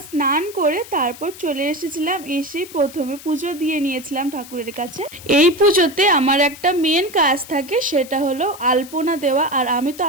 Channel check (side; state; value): left; noise; hiss, 17 dB below the sound